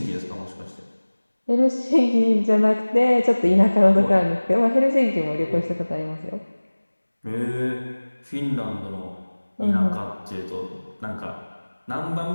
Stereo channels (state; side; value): inverted; both; correlation -1.00